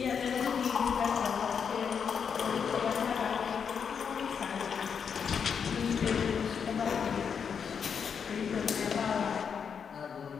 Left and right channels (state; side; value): quieter; right; 6.8 dB